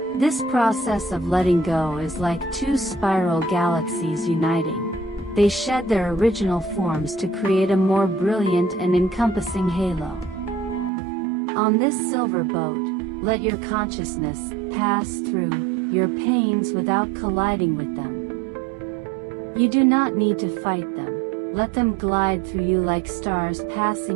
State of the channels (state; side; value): drops out; left; at 10.9 s